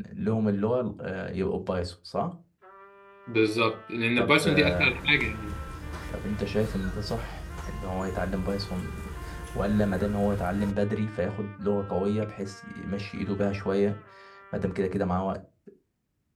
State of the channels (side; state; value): both; identical; correlation 1.00